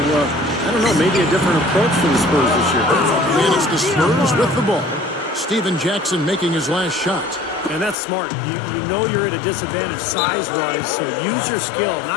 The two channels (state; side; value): drops out; right; at 8.0 s